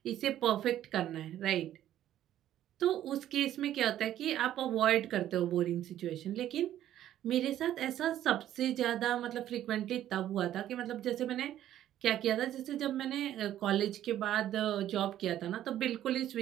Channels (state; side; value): quieter; left; 12.1 dB